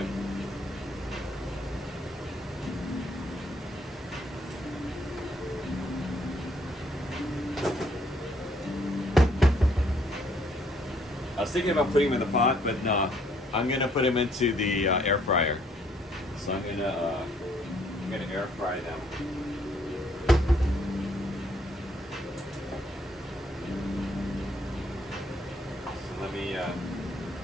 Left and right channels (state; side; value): normal; both; correlation 0.66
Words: I was thinking about putting them in the pot, but no, I'm gonna put them into the air fryer. So I'm gonna air fry them. So let me